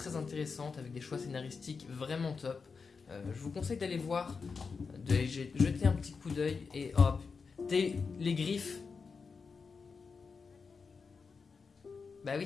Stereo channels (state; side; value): quieter; right; 5.1 dB